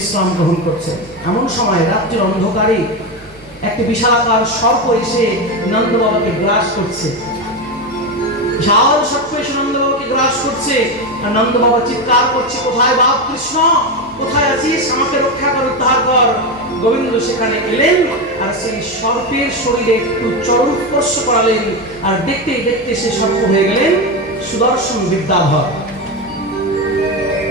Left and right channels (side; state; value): both; normal; correlation 0.15